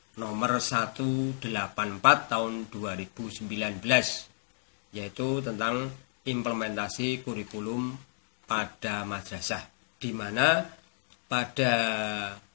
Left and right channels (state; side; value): silent; right; digital silence